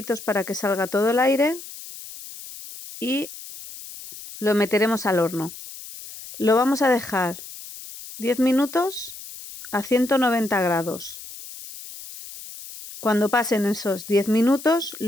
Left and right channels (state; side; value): noise; left; hiss, 14 dB below the sound